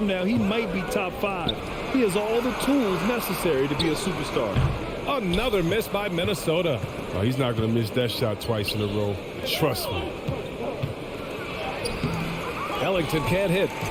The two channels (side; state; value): both; identical; correlation 1.00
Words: now, he might be top 5. He has all the tools necessary to be a superstar. Another miss by Minnesota. Oh, he's not going to miss that shot twice in a row. Trust me. Ellington can't hit.